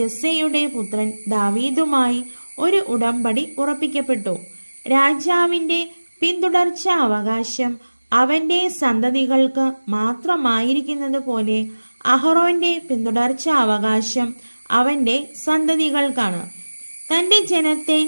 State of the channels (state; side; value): inverted; both; correlation -1.00